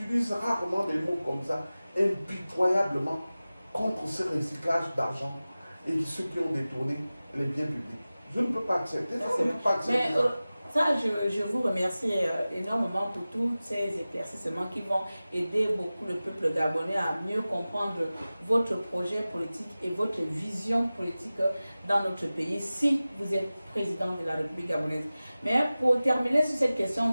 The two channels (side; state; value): both; inverted; correlation -0.97